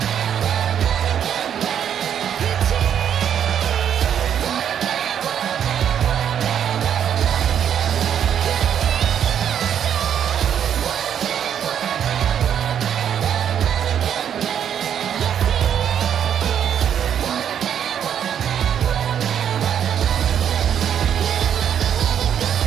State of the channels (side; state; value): left; quieter; 9.0 dB